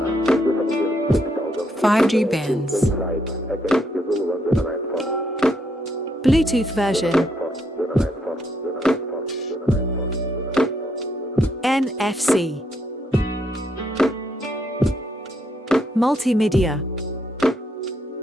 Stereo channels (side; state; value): both; normal; correlation 0.75